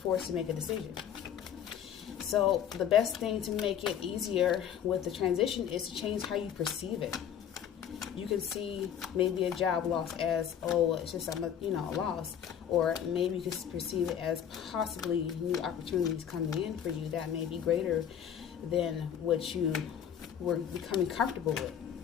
to make a decision. So the best thing to make it easier with the transition is to change how you perceive it. You can see maybe a job loss as, oh, it's just a loss. Or maybe you can perceive it as possibly new opportunities coming in for you that may be greater than what you were becoming comfortable with.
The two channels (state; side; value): quieter; right; 9.0 dB